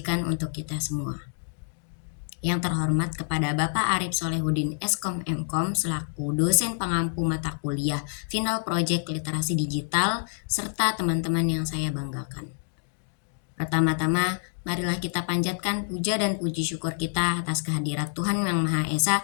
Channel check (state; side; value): silent; right; digital silence